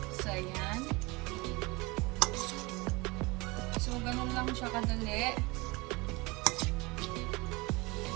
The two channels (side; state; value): left; quieter; 24.7 dB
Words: So ayan. So ganun lang siya kadali.